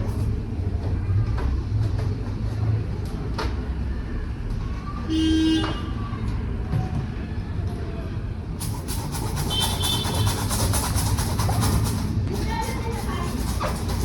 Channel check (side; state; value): both; identical; correlation 1.00